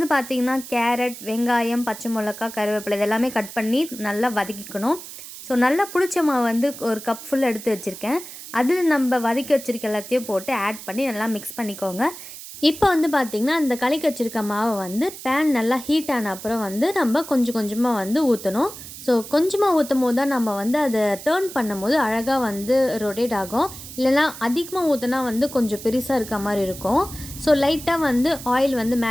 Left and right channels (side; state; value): right; noise; hiss, 13 dB below the sound